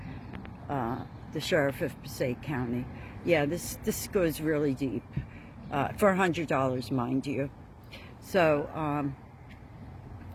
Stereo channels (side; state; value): both; identical; correlation 1.00